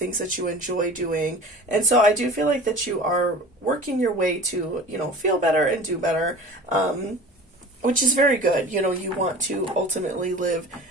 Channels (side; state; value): both; normal; correlation 0.39